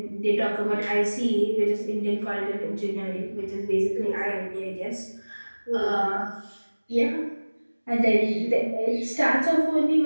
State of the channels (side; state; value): both; inverted; correlation -1.00